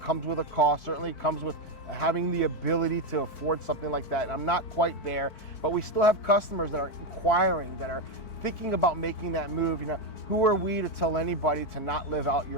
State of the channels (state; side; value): late; right; 4.5 ms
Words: with a cost, certainly comes with having the ability to afford something like that. And I'm not quite there, but we still have customers that are inquiring, that are thinking about making that move. You know, who are we to tell anybody to not live out